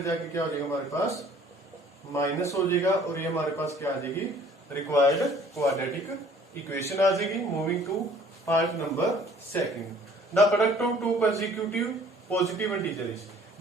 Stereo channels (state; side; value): normal; both; correlation 0.54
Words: जाके क्या हो जाएगा हमारे पास? माइनस हो जाएगा. और ये हमारे पास क्या आ जाएगी? रिक्वायर्ड क्वाड्रेटिक इक्वेशन आ जाएगी. Moving to part number second. The product of two consecutive positive integers.